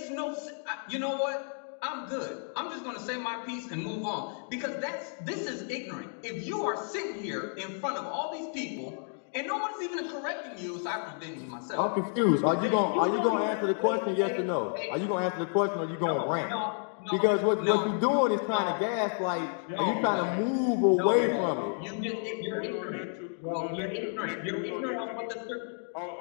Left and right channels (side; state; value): right; silent; 57 dB below the other